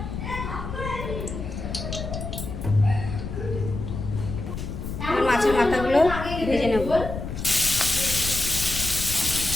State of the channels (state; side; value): noise; left; rumble, 6 dB below the sound